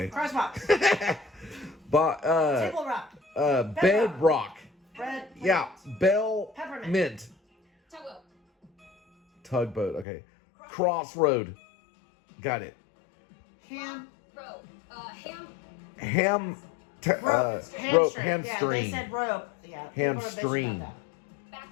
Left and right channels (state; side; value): drops out; right; at 10.1 s